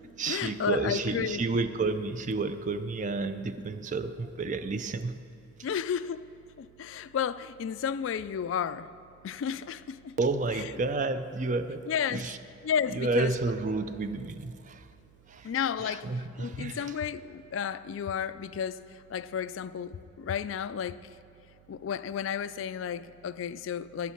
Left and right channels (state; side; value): noise; right; hum, 26 dB below the sound